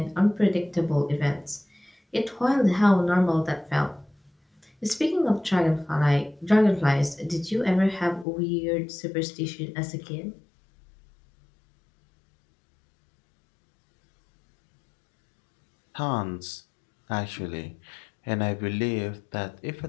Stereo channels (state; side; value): drops out; right; at 8.2 s